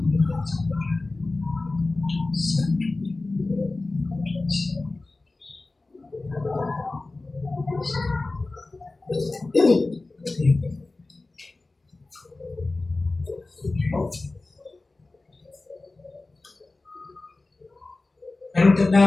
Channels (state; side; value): quieter; right; 3.3 dB